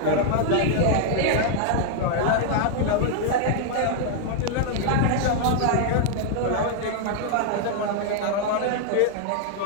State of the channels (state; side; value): different; both; correlation 0.00